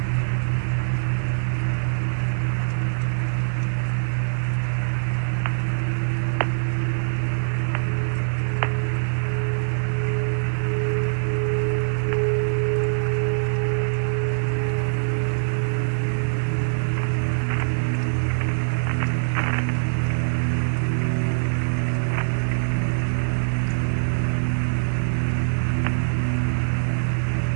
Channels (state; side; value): silent; left; 56 dB below the other